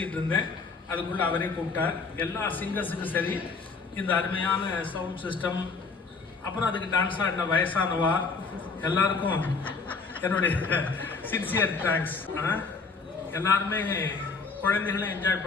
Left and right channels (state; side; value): quieter; right; 4.5 dB